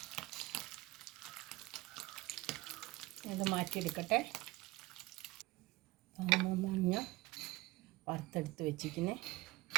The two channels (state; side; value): quieter; left; 20.5 dB